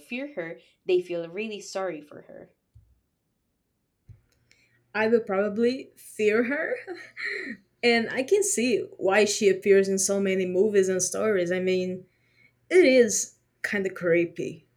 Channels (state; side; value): identical; both; correlation 1.00